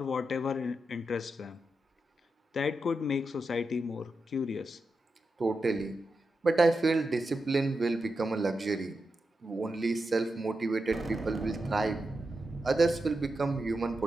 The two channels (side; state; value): both; normal; correlation 0.88